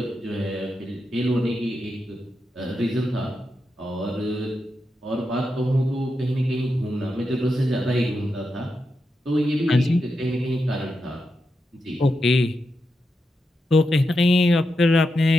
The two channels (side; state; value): both; normal; correlation 0.86